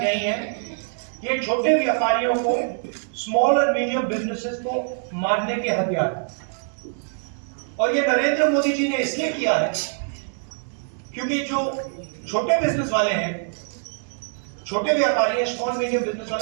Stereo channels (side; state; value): left; silent; digital silence